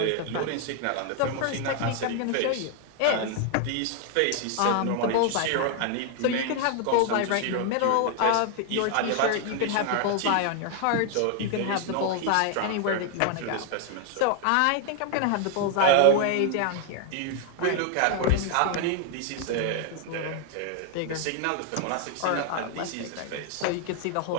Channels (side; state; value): both; different; correlation 0.00